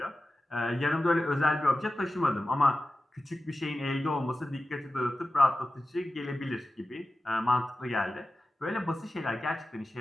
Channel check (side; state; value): both; normal; correlation 0.94